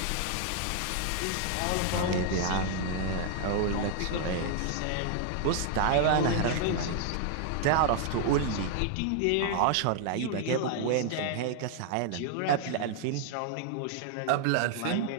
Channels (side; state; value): both; different; correlation 0.00